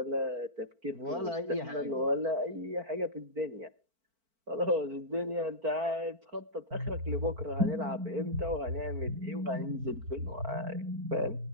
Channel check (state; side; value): late; left; 4.5 ms